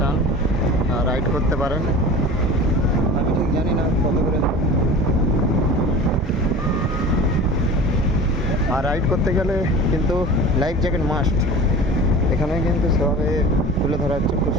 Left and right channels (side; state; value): both; normal; correlation 0.37